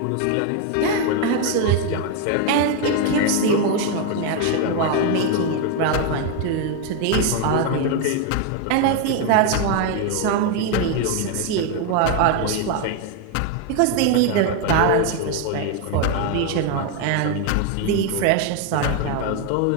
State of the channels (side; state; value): both; different; correlation 0.01